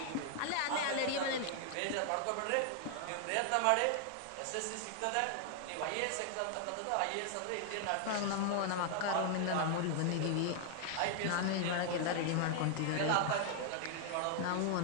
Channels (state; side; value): different; both; correlation 0.00